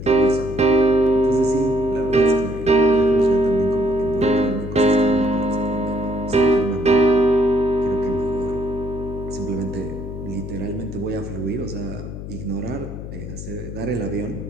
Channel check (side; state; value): left; noise; hum, 9 dB below the sound